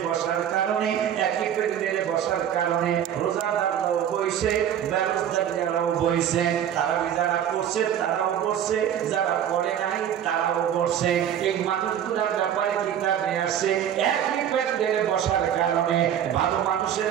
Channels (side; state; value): left; quieter; 9.7 dB